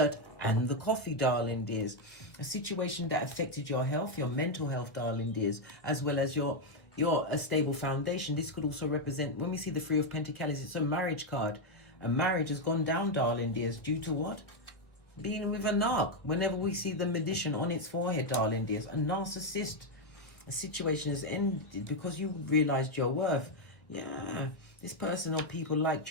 and the coffee, darling dears. A situation that affected your health, your mental health, darling dears, as well as your a stable foundation. This could also represent, when we see the 3 of Pentacles, it's a marriage card. A marriage has gone down, darling dears, due to what? Being with a narc. Whenever we see the magician on its forehead, darling dears, a narcissist. A situation has ended because you realized your worth. Yeah, this person or people liked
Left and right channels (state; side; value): late; right; 1.6 ms